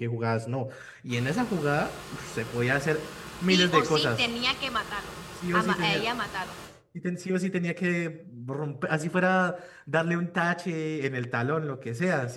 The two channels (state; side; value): identical; both; correlation 1.00